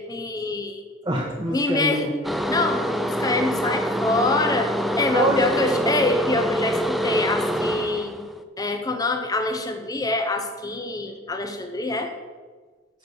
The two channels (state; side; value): normal; both; correlation 0.44